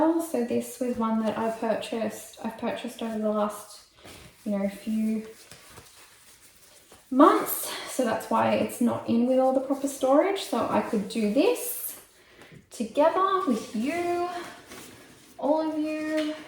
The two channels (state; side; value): identical; both; correlation 1.00